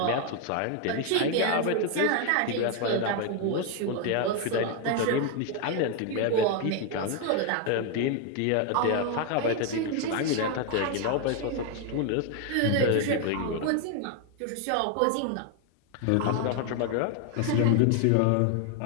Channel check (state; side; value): different; both; correlation 0.01